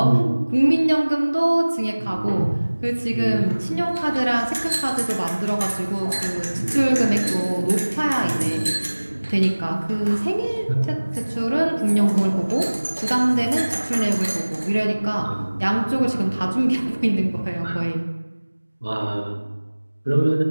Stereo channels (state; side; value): inverted; both; correlation -1.00